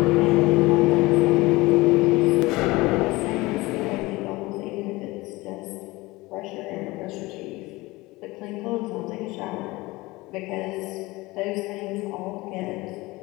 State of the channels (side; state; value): right; quieter; 21.2 dB